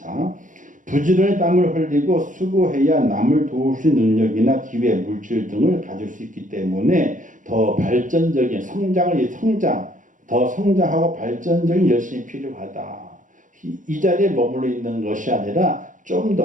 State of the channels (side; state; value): left; late; 0.38 ms